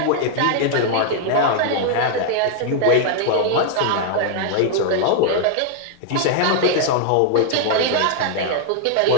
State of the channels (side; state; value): both; different; correlation -0.01